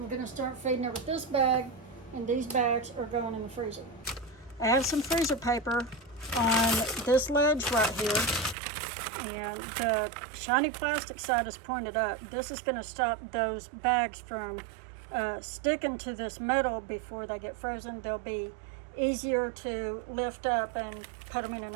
gonna start feeding her with this bag, and these bags are going in the freezer. I have some freezer paper on this ledge right here, and the shiny plastic side is pointed up. This is gonna stop those bags from sticking to this metal before they get frozen. They'll be easier to lift up and put them in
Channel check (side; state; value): left; drops out; at 8.6 s